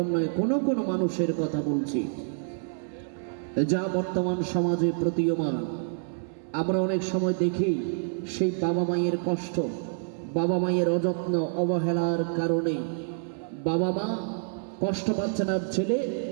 নয়, কোনো কোনো মানুষের কথা বলছি যা বর্তমান সমাজে প্রতীয়মান। আমরা অনেক সময় দেখি সেই বাবা মায়ের কষ্ট, বাবা মায়ের অযত্ন অবহেলার কারণে বাবা মা কষ্ট পাচ্ছেন। আর ছেলে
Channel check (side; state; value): left; silent; 60 dB below the other